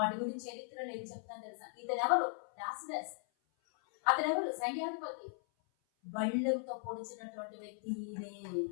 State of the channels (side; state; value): right; silent; 52 dB below the other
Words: గురించి చరిత్రలో ఏం చెప్తున్నా తెలుసా? ఇతను ఎవరు? లాజరస్. అతను ఎవరు? సైన్యాధిపతి. బళ్ళెంతో పొడిచినటువంటి వ్యక్తి ఈయనే.